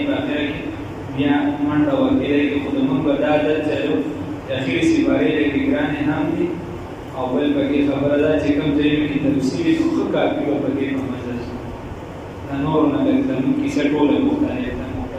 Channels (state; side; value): identical; both; correlation 1.00